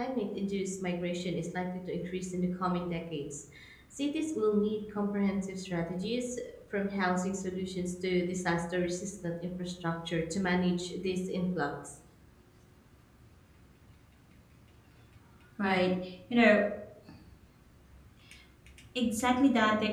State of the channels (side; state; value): both; identical; correlation 1.00